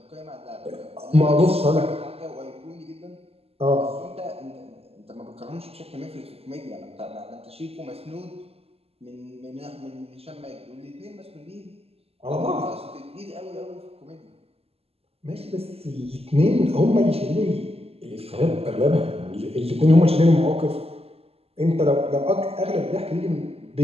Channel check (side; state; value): left; late; 0.29 ms